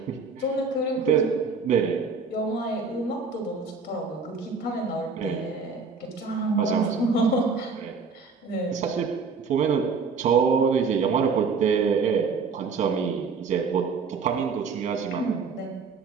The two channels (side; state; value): left; quieter; 4.9 dB